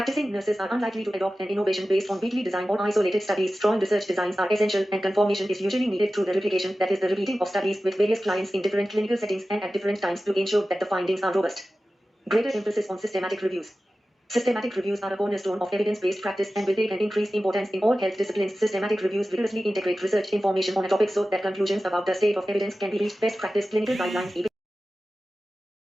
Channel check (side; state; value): both; normal; correlation 0.95